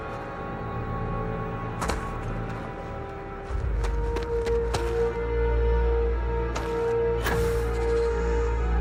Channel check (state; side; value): identical; both; correlation 1.00